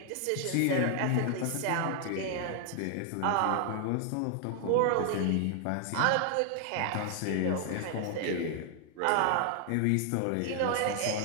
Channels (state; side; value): different; both; correlation 0.00